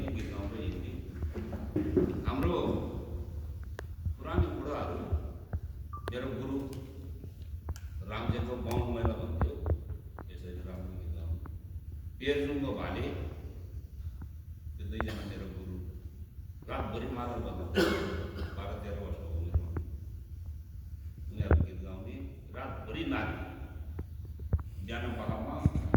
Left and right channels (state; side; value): identical; both; correlation 1.00